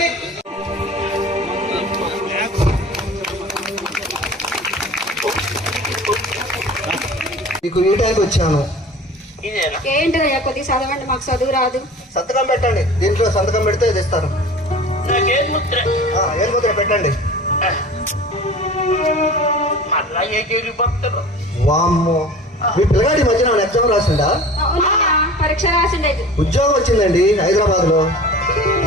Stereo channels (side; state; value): both; normal; correlation 0.40